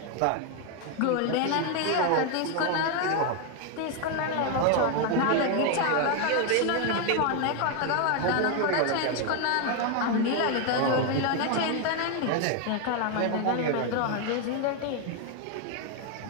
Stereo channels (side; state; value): both; different; correlation 0.01